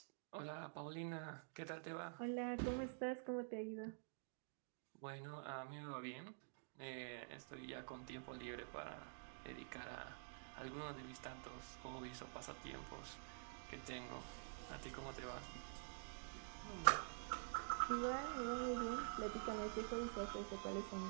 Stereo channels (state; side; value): silent; left; digital silence